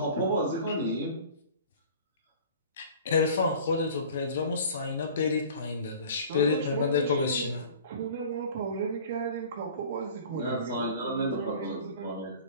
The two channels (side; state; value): both; inverted; correlation -0.43